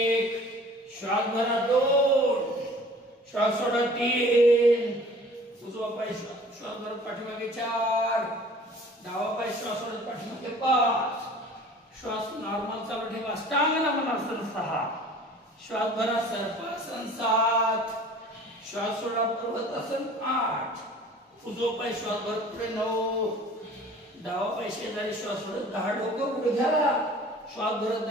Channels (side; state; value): both; normal; correlation 0.47